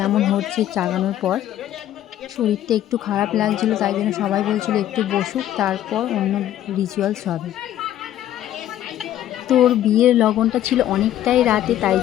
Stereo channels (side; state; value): right; quieter; 12.2 dB